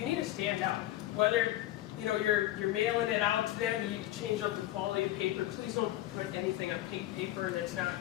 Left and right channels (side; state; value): right; quieter; 14.8 dB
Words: need to stand out. Whether, you know, you're mailing it out to them, you change up the quality of paper. Please don't put anything on pink paper. That's not